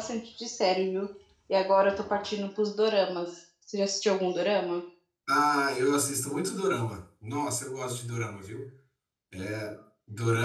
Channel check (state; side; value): identical; both; correlation 1.00